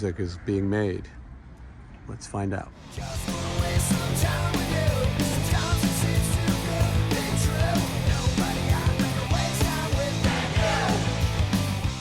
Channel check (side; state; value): both; identical; correlation 1.00